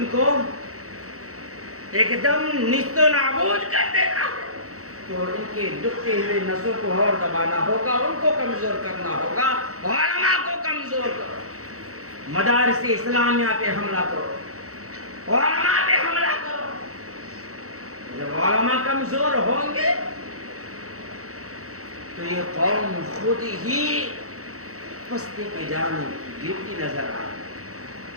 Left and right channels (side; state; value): left; late; 0.65 ms